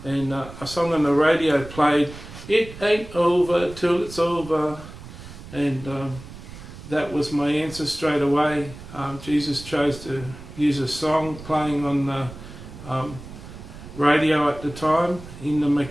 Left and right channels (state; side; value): noise; right; rumble, 15 dB below the sound